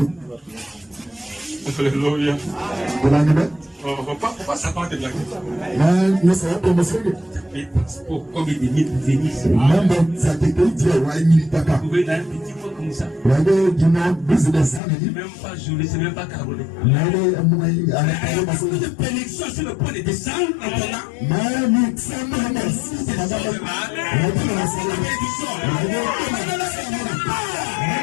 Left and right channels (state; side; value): drops out; right; at 14.8 s